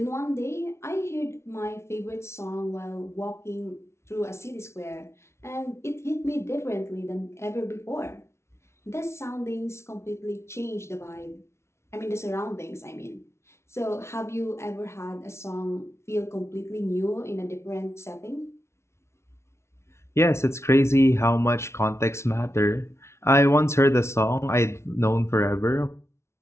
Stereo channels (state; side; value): late; right; 0.13 ms